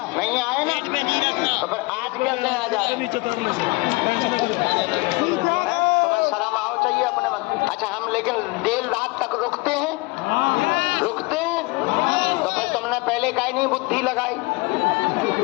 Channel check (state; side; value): quieter; right; 25.1 dB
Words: नहीं आए ना, तो फिर आज कैसे आ जाए? तुम्हें शर्म आओ चाहिए अपने मन। अच्छा, हम लेकिन देर रात तक रुकते हैं, तो फिर तुमने पहले काहे नहीं बुद्धि लगाई?